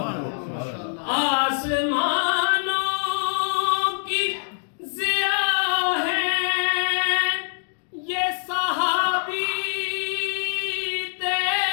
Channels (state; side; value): silent; right; digital silence